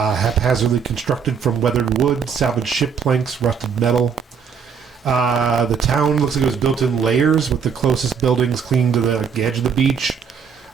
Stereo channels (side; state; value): left; quieter; 6.6 dB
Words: constructed from weathered wood, salvaged ship planks, rusted metal. The town looks like it was built in layers, with the closest buildings clinging to the edge of the beach.